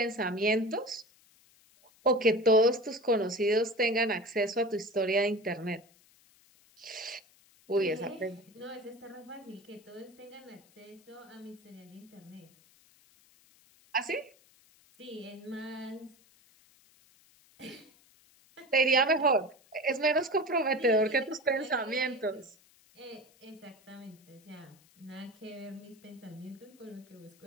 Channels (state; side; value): noise; left; hiss, 29 dB below the sound